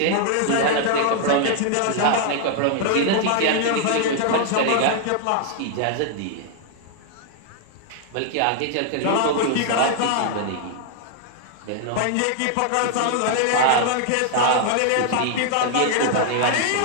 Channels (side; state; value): both; different; correlation -0.01